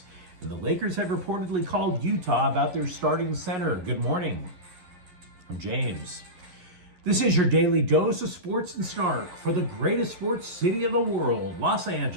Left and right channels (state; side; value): late; left; 11 ms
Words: and the Lakers have reportedly called Utah about their starting center. Good morning. I'm James. This is your daily dose of sports and snark for the greatest sports city in the world, Los